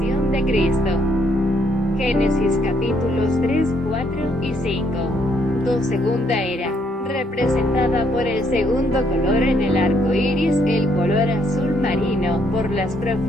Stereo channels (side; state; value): both; normal; correlation 0.70